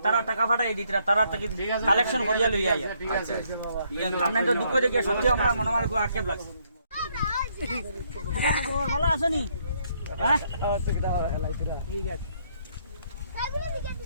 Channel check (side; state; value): both; inverted; correlation -0.71